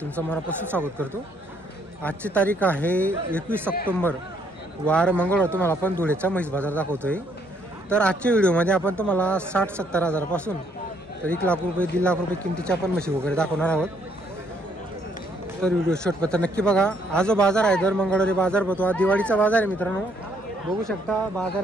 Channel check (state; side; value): normal; both; correlation 0.68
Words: तुमचं मनापासून स्वागत करतो। आजची तारीख आहे 21 ऑक्टोबर, वार मंगळवार। तुम्हाला आपण धुळेचा म्हैस बाजार दाखवतोय। तर आजच्या व्हिडिओमध्ये आपण तुम्हाला 60-70 हजारापासून तर 1 लाख रुपये 1.5 लाख रुपये किमतीच्या पण म्हशी वगैरे दाखवणार आहोत। तर व्हिडिओ शेवटपर्यंत नक्की बघा। आज जो बाजार आहे दर मंगळवारी बाजार भरतो। हा दिवाळीचा बाजार आहे मित्रांनो, बघू शकता